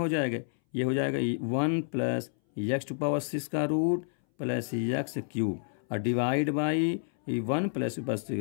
जाएगा, ये हो जाएगा 1 + x⁻6 का रूट प्लस x³ और डिवाइड बाई 1 +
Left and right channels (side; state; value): right; silent; 58 dB below the other